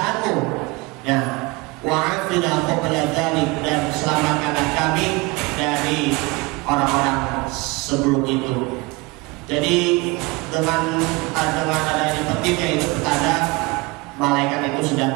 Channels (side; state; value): left; quieter; 24.6 dB